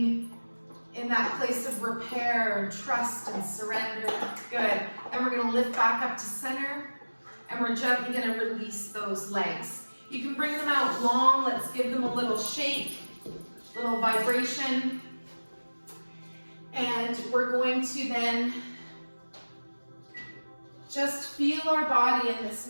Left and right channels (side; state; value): both; inverted; correlation -1.00